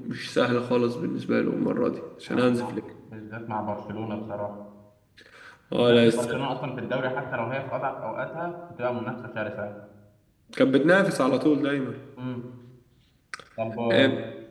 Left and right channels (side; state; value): both; identical; correlation 1.00